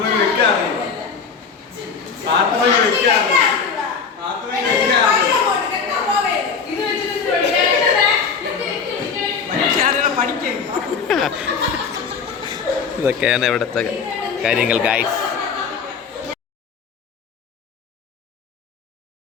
ഇതൊക്കെയാണ് ഇവിടുത്തെ കാര്യങ്ങൾ ഗൈസ്.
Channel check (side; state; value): right; quieter; 5.8 dB